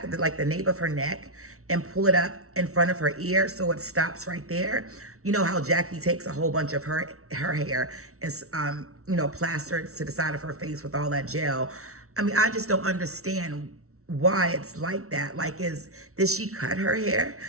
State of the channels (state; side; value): late; left; 0.63 ms